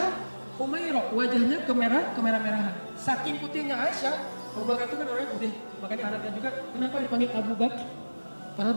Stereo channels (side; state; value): both; inverted; correlation -1.00